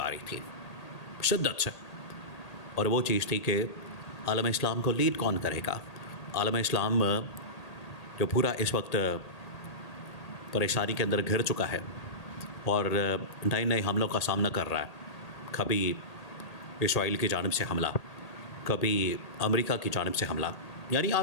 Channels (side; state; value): right; late; 1.8 ms